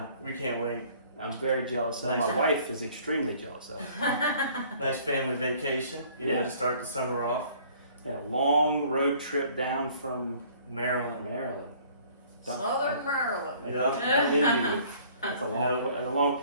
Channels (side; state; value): both; inverted; correlation -0.55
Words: we can't wait. I'm very jealous of. Nice. My wife is extremely jealous of. Nice family vacation. To start the summer off. And a long road trip down from Maryland. Southern Maryland. Yeah. It's a long.